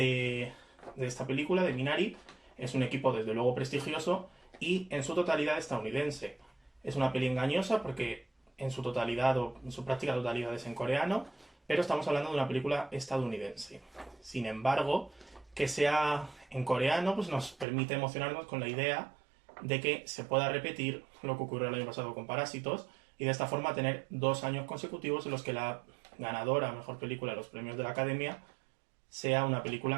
esta película, de Minari, es un equipo desde luego prestigioso y en su totalidad estadounidense. Es una peli engañosa porque en su totalidad o en su práctica totalidad es en coreano, pero estamos hablando de una película estadounidense. Sin embargo, que sea en coreano pues nos permite emocionarnos con la idea de que se pueda repetir lo que ocurrió el año pasado con Parásitos y de esta forma tener 2 años consecutivos en los que la ganadora a mejor película de los premios de la Academia sea una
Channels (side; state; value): left; drops out; at 17.7 s